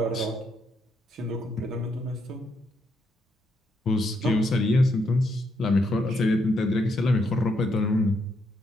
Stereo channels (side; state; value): both; normal; correlation 0.77